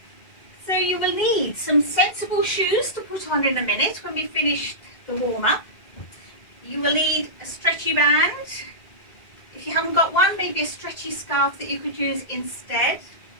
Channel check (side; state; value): right; late; 2.1 ms